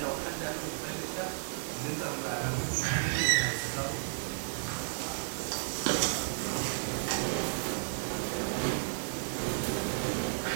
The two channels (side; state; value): left; silent; digital silence